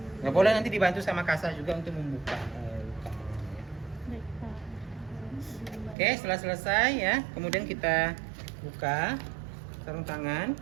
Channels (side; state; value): left; drops out; at 6.0 s